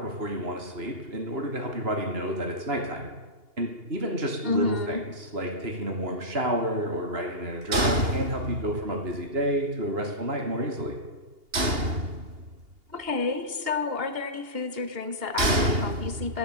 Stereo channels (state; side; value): late; left; 2.8 ms